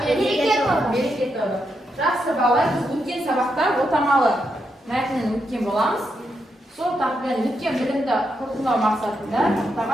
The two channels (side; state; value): both; normal; correlation 0.82